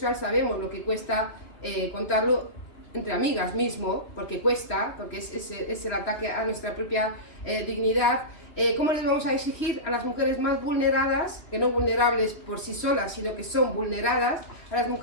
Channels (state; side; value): late; right; 2.6 ms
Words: sabemos lo que cuesta contarlo, entre amigas mismo, porque cuesta, porque es el ataque a nuestra propia dignidad. ¿Cómo les vamos a exigir a las mujeres más vulneradas, que no vulnerables por sí solas, sino que son vulneradas, a las